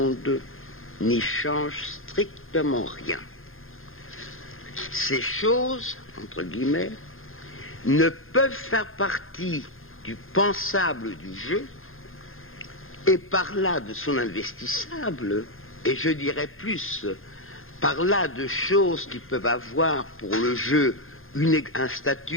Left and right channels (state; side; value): late; right; 0.60 ms